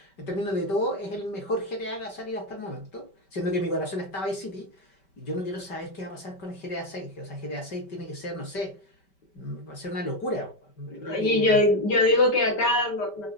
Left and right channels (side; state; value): right; late; 5.1 ms